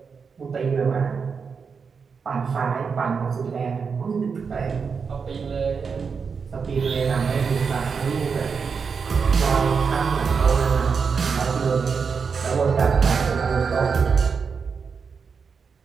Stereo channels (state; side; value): quieter; left; 5.7 dB